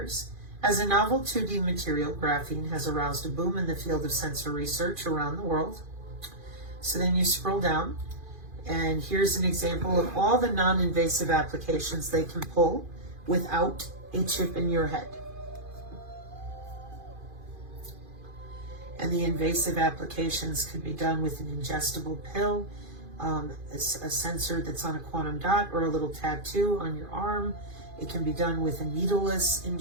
As a novel 2D material, graphene has aroused a boom in the field of sensor research around the world. So then you scroll down, and here's an example of all the non-invasive applications they can pull without a chip in your head. And the invasive applications can be done with an ingestible pill, a sensor that's on a quantum dot, or a little tattoo on your arm. It can be done with a needleless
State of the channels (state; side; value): late; left; 2.5 ms